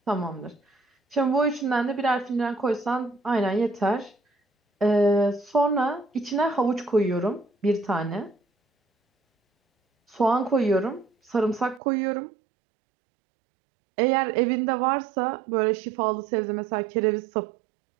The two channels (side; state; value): left; drops out; at 11.8 s